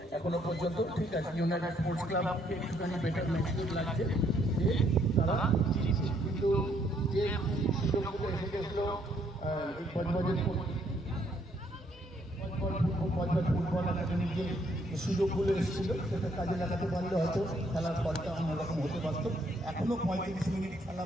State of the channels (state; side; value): normal; both; correlation 0.69